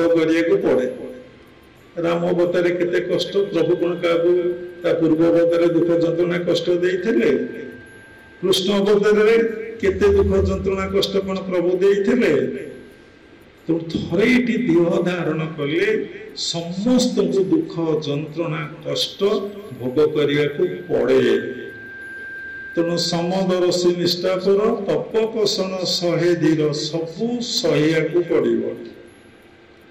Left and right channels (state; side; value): identical; both; correlation 1.00